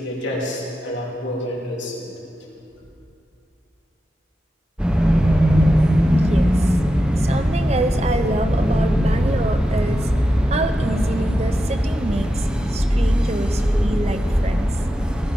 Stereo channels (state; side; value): normal; both; correlation 0.89